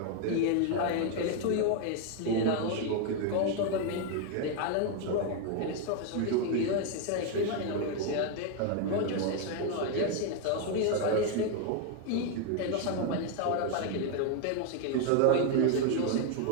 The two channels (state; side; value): different; both; correlation 0.01